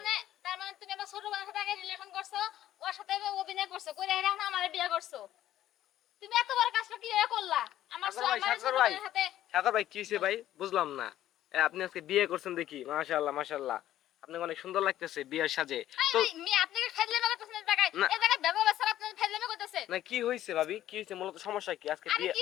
মানে তুমি আমার ছোট বোনের সাথে আগে রিলেশন করছো, ওর সাথে অভিনয় করছো, করে এখন আমার বিয়ে করছো। তুমি এত বড় কাজটা কিভাবে করলা? আমার সাগর ভাই, আমার ছোট সাগর ভাই, বোনের সাথে সাগর ভাই, কি হয়েছে ভাই? বুঝলাম না। আপনি আজকে বিয়ে করছেন দেখি, মাশাআল্লাহ মাশাআল্লাহ, আপনাকে অনেক সুন্দর লাগতেছে বিয়ের সাজে। তো মি আপনাকে ফাজলামি করতেছেন এই জায়গায়, না। এই জায়গায় ব্যবহার স্যার আপনি ফাজলামি করতেছেন। না, কি হয়েছে ভাবি? কি হয়েছে? মূলত সমস্যা কি আজকে আরে বিয়ে? কি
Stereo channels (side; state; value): right; quieter; 12.8 dB